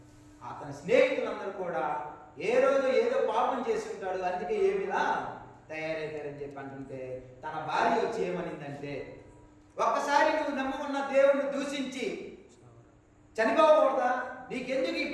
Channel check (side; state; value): both; identical; correlation 1.00